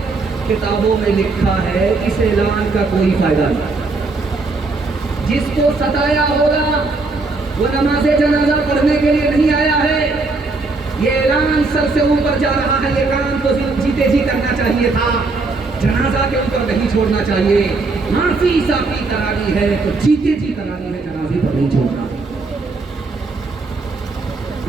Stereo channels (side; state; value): left; quieter; 3.7 dB